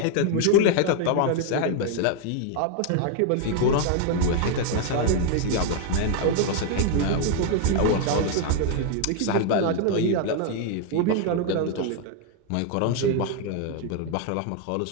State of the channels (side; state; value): both; different; correlation 0.00